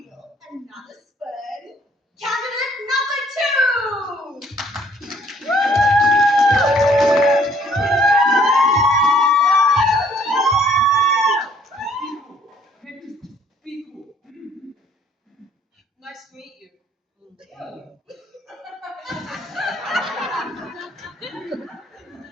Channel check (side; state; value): both; normal; correlation 0.61